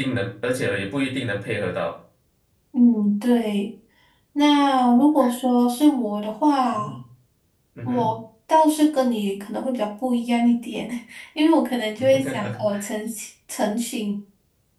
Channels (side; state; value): both; identical; correlation 1.00